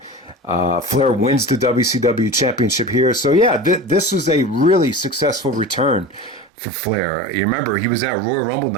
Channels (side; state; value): left; drops out; at 6.5 s